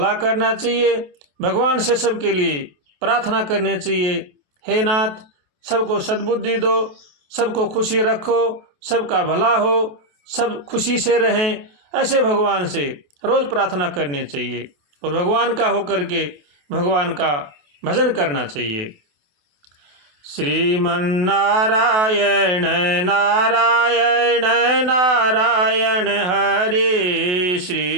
करना चाहिए, भगवान से सबके लिए प्रार्थना करनी चाहिए। हे नाथ, सबको सद्बुद्धि दो, सबको खुशी रखो, सबका भला हो, सब खुशी से रहें, ऐसे भगवान से रोज़ प्रार्थना करनी चाहिए और भगवान का होकर के भगवान का भजन करना चाहिए। श्रीमन्नारायण नारायण नारायण हरे,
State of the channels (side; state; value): left; late; 28 ms